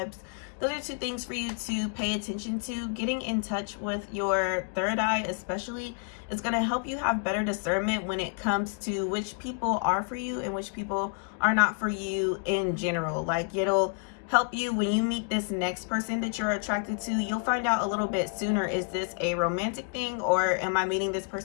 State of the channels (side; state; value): right; quieter; 38.7 dB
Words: Those are 2 things for you to pay attention to. Getting in touch with your third eye especially is going to help you have better discernment when it comes to which people are for you and which people are not for you in general. Like it'll help you when you meet this next person that you're attracted to. You'll find out a little bit sooner, is this a romantic thing or am I meeting this